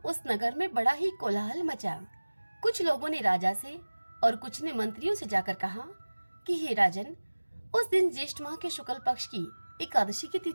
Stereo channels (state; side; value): inverted; both; correlation -1.00